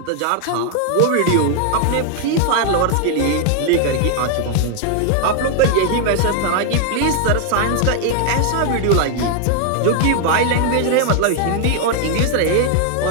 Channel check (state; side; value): different; both; correlation 0.00